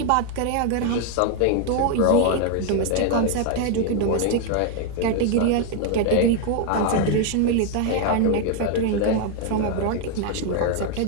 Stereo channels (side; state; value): both; different; correlation 0.01